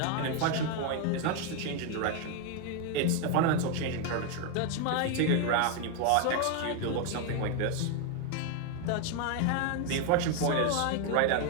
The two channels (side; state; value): both; different; correlation 0.01